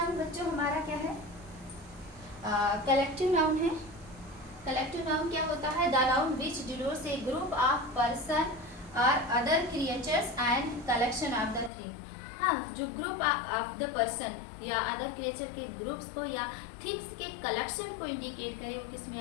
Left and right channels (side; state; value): right; drops out; at 11.7 s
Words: बच्चों हमारा क्या है, कलेक्टिव नाउन है। कलेक्टिव नाउन क्या होता है, the noun which denotes a group of person और other creatures and collection of the thing. हाँ, जो ग्रुप ऑफ द पर्सन या अदर क्रिएचर के ग्रुप्स को या थिंग्स के कलेक्शन को इंडिकेट करे, वो किस में